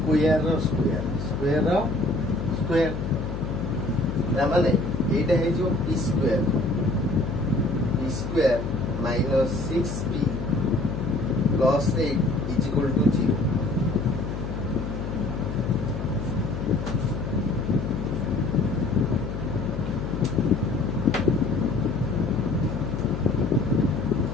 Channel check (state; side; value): noise; left; hum, 5 dB below the sound